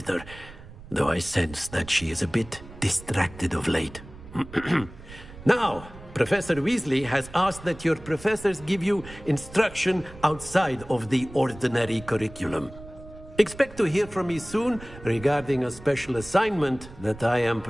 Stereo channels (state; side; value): noise; right; rumble, 17 dB below the sound